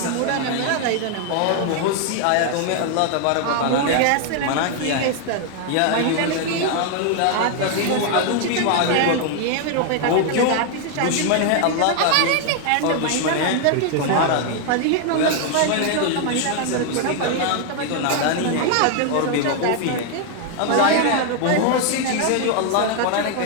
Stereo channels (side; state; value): both; different; correlation 0.00